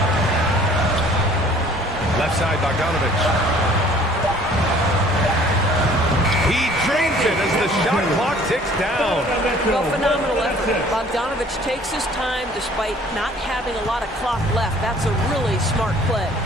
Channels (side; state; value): both; normal; correlation 0.54